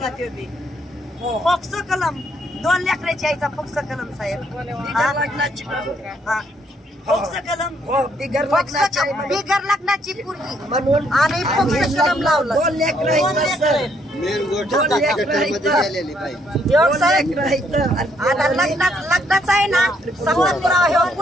ते बी, फोक्सो कलम 2 लेकराची आईचा फोक्सो कलम साहेब. फोक्सो कलम बिगर लग्नाची पोरगी म्हणून आणि फोक्सो कलम लावला. 2 लेकरं आता लग्नाचं आहे ना संवाद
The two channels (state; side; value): normal; both; correlation 0.70